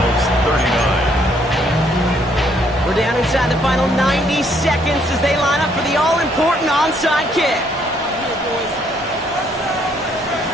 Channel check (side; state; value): both; normal; correlation 0.68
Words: 39. We're down inside the final 90 seconds as they line up for the all-important onside kick.